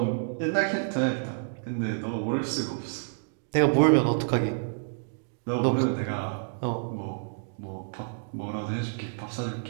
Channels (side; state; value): left; silent; digital silence